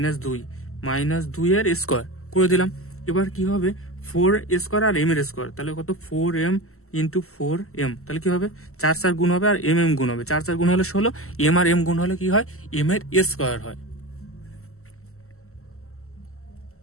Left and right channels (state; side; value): late; right; 0.63 ms